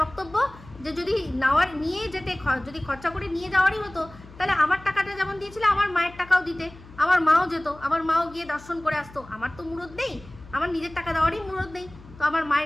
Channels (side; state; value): left; noise; hum, 20 dB below the sound